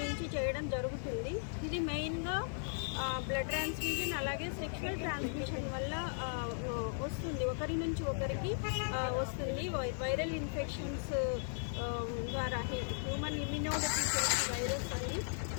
చేయడం జరుగుతుంది. ఇది మెయిన్గా బ్లడ్ ట్రాన్స్ఫ్యూజన్, అలాగే సెక్షువల్ ట్రాన్స్మిషన్ వల్ల వస్తుంది, ఒకరి నుంచి ఒకరికి వస్తుంది. వైరల్ ఇన్ఫెక్షన్స్ ద్వారా హ్యూమన్ ఇమ్యూనోడెఫిషియన్సీ వైరస్ అని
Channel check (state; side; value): silent; right; digital silence